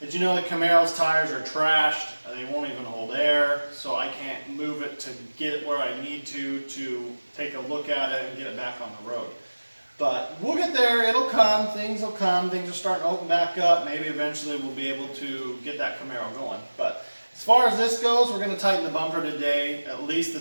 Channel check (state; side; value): inverted; both; correlation -1.00